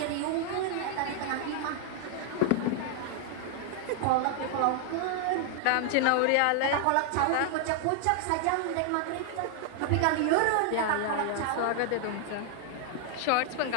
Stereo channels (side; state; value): both; different; correlation 0.00